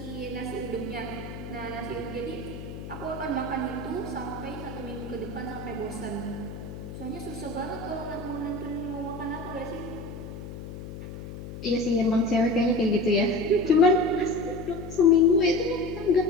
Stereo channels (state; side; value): noise; left; hum, 10 dB below the sound